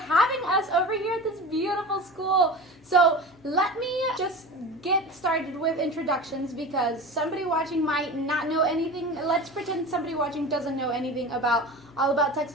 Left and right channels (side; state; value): left; noise; hum, 30 dB below the sound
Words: us over here at this beautiful school. So let me just get started with introductions, because somebody watching might not know anything. Let's pretend somebody watching doesn't know anything about All About